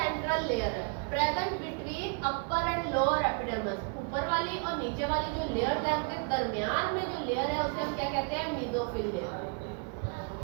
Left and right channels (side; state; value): left; quieter; 37.9 dB